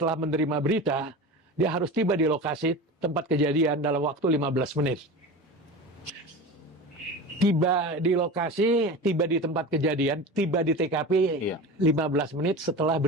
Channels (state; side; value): normal; both; correlation 0.30